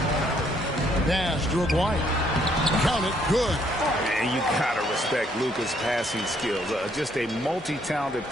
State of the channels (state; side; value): normal; both; correlation 0.68